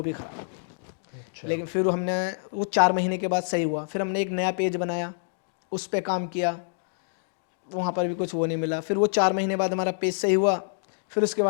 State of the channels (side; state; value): right; silent; digital silence